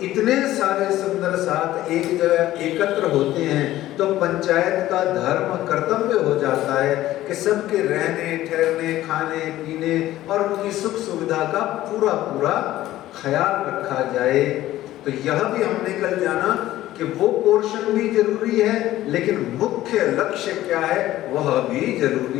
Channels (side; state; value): right; quieter; 14.8 dB